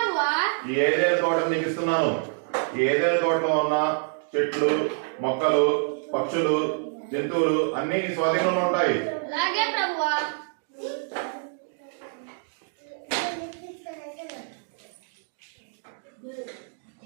ఈ ఏదైనా తోట నీకు ఇస్తున్నాను. ఈ ఏదైనా తోటలో ఉన్న చెట్లు, మొక్కలు, పక్షులు, జంతువులు అన్ని స్వాధీనంలో ఉంటాయి. అలాగే ప్రభువా.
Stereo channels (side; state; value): left; silent; 61 dB below the other